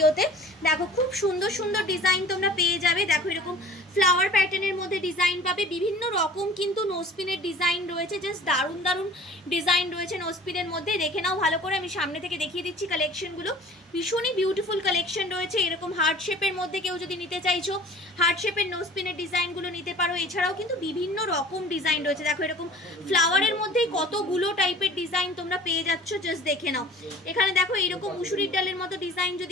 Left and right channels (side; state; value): both; normal; correlation 0.45